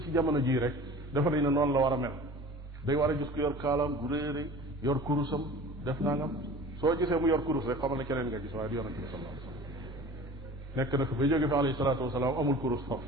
ci jamono jii rek dafa nañ ne noonu la war a mel day war a gis ko yor kaalaam bu réere yor kurusam def nangam soo gisee mu yor kurus rek xamal ne keneen nga gis waaye du yonente bi sallallahu alayhi wasallam nekk na fi ba jóge fi alayhi salaatu wasalaam amul kurus foofu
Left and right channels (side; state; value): both; normal; correlation 0.41